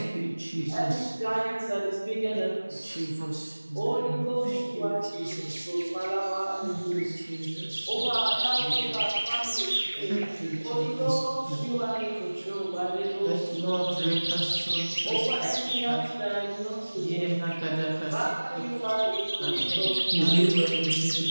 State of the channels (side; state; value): both; inverted; correlation -1.00